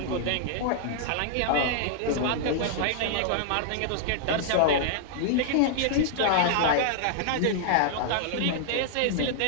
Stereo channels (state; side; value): different; both; correlation -0.01